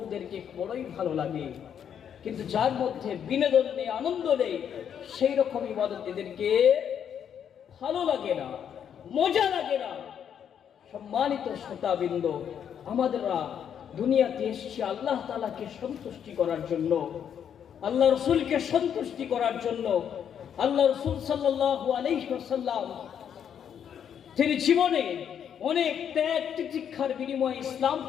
বড়ই ভালো লাগে। কিন্তু যার মধ্যে বিনোদন নেই, আনন্দ নেই, সেই রকম ইবাদত এদেরকে ভালো লাগে না, মজা লাগে না। সম্মানিত শ্রোতাবৃন্দ, আমাদেররা দুনিয়াতে এসেছি আল্লাহ তাআলাকে সন্তুষ্টি করার জন্য, আল্লাহ রসুলকে সন্তুষ্টি করার জন্য। আল্লাহ রসুল সাল্লাল্লাহু আলাইহি ওয়াসাল্লাম তিনি জীবনে অনেক ত্যাগ তিতিক্ষার বিনিময়ে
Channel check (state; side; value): quieter; right; 8.6 dB